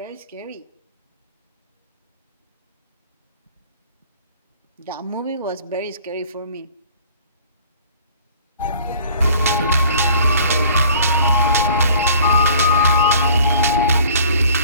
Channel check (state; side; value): inverted; both; correlation -0.51